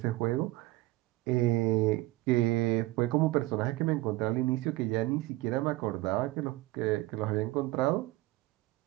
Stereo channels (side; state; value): left; quieter; 19.3 dB